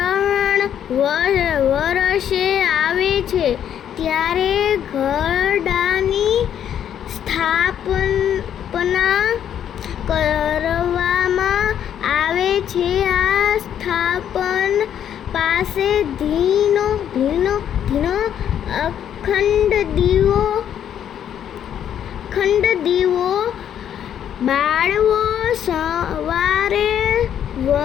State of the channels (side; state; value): right; quieter; 9.6 dB